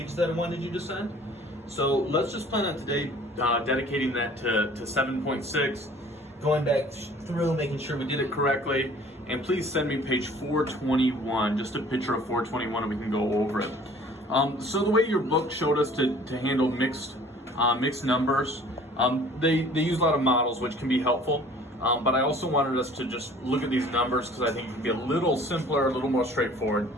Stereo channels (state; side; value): normal; both; correlation 0.51